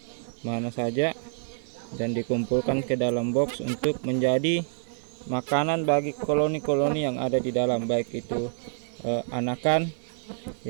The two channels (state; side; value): silent; left; digital silence